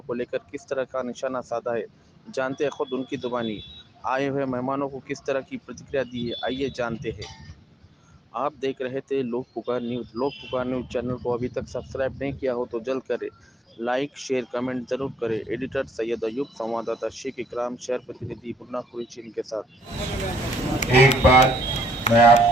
को लेकर किस तरह का निशाना साधा है, जानते हैं खुद उनकी जुबानी। आए हुए मेहमानों को किस तरह की प्रतिक्रिया दी है, आइए जानते हैं। आप देख रहे थे लोक पुकार न्यूज़। लोक पुकार न्यूज़ चैनल को अभी तक सब्सक्राइब नहीं किया हो तो जल्द करें। लाइक, शेयर, कमेंट जरूर करें। एडिटर सैयद अयूब, संवाददाता शेख इकराम, शहर प्रतिनिधि मुन्ना कुरैशी के साथ। एक बात मैं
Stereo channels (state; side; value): normal; both; correlation 0.72